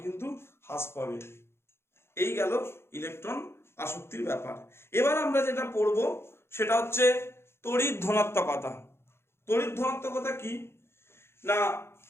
কিন্তু হ্রাস পাবে। এই গেল ইলেকট্রন আসক্তির ব্যাপার। এবার আমরা যেটা পড়ব সেটা হচ্ছে তড়িৎ ধনাত্মকতা। তড়িৎ ধনাত্মকতা কি না,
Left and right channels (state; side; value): late; right; 0.12 ms